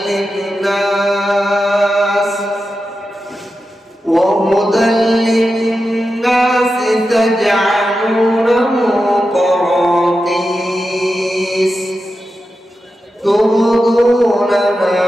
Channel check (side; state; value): both; normal; correlation 0.90